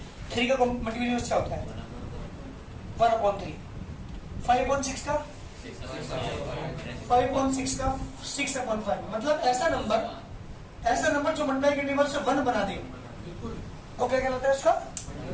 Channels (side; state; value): both; identical; correlation 1.00